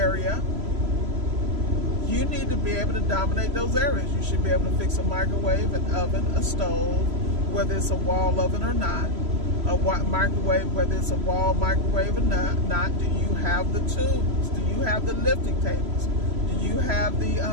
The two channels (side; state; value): left; late; 3.0 ms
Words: You need to be able to dominate those areas. You should be able to fix a microwave, an oven, a stove, whether it's a wall oven or not. A microwave, whether it's a wall microwave or not. Do you have the tools? Do you have the lifting tables? Do you have the